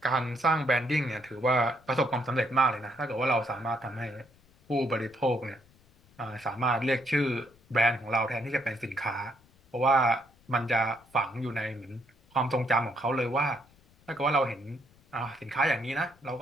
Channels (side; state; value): left; noise; rumble, 30 dB below the sound